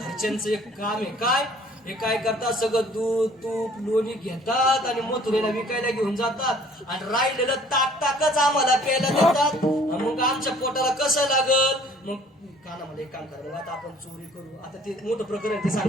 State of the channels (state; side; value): normal; both; correlation 0.55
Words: एक काम आहे. काय हे काय करतात, सगळं दूध तूप लोणी घेतात आणि मथुरेला विकायला घेऊन जातात आणि राहिलेलं ताकच आम्हाला प्यायला देतात. मग आमच्या पोटाला कसं लागल. मग कानामध्ये एक काम करा, मग आता आपण चोरी करू. आता ते मोठं प्रकरण ते